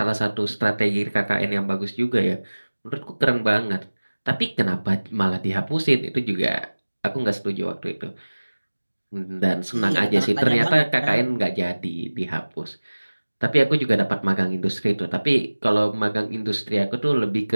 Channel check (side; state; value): both; inverted; correlation -1.00